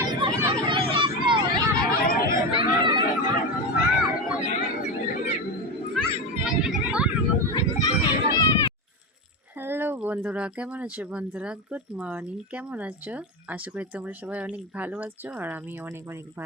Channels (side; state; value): both; normal; correlation 0.17